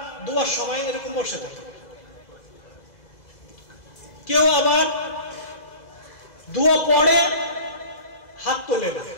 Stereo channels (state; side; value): late; right; 2.0 ms